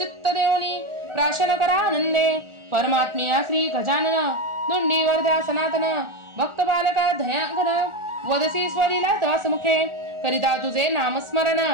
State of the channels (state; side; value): late; left; 1.4 ms